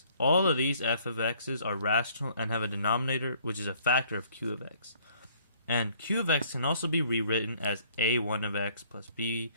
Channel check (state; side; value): inverted; both; correlation -0.60